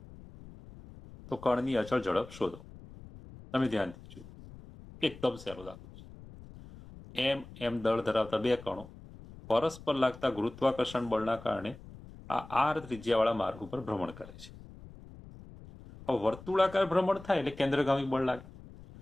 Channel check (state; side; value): noise; left; rumble, 17 dB below the sound